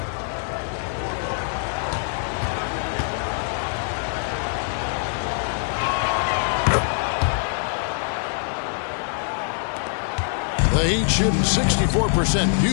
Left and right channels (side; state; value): right; silent; 63 dB below the other